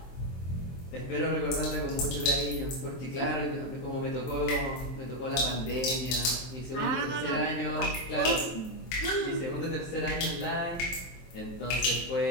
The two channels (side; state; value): right; late; 23 ms